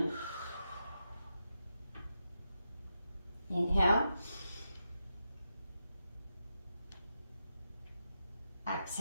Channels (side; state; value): both; inverted; correlation -0.87